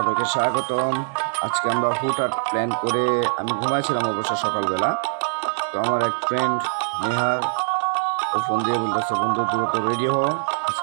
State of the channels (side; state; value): left; silent; digital silence